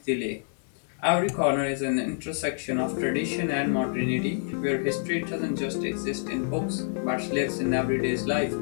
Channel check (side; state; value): right; silent; 60 dB below the other